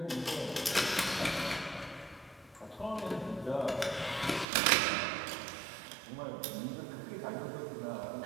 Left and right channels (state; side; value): drops out; left; at 4.5 s